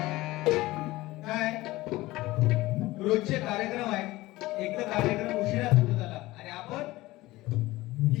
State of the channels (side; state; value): right; quieter; 18.6 dB